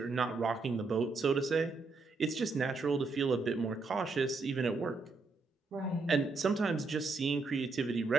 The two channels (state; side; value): quieter; left; 3.9 dB